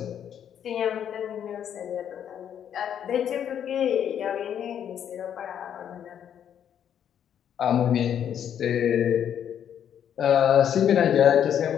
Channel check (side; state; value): right; quieter; 9.2 dB